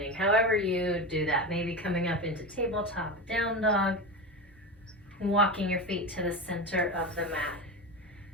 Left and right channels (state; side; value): normal; both; correlation 0.22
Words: however you do that. Maybe coming up into tabletop, down dog, walking your feet to the center of the mat.